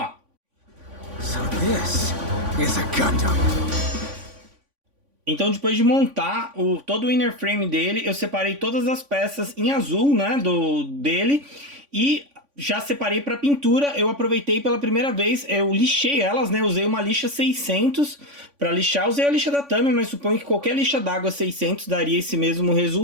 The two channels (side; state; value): left; late; 3.5 ms